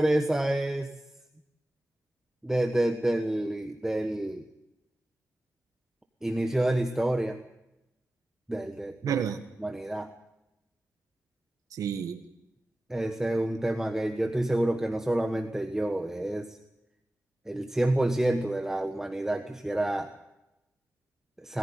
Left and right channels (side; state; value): both; normal; correlation 0.95